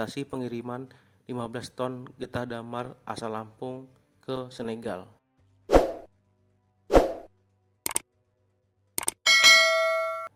pengiriman 15 ton getah damar asal Lampung ke Senegal.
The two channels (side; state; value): both; identical; correlation 1.00